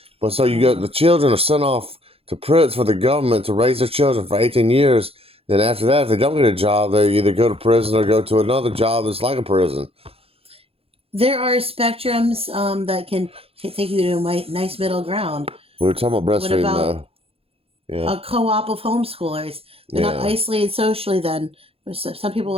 But so you got the children are sent off to prison for the government to raise their children for 18 years. Then after that, if they don't get a job, they either go to prison or go to another job that's like a prison. There are spectrums that can take you to a nice middle ground. We were talking about What breastfeeding, about though. Yeah, a co-op of homeschoolers? They're not yeah. isolated socially then. Some people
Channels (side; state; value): left; late; 0.28 ms